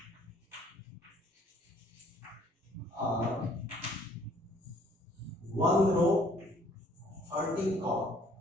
are 1 row 13 column.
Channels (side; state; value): both; normal; correlation 0.60